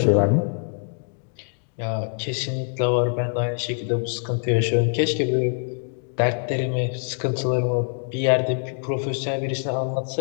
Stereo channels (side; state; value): right; silent; digital silence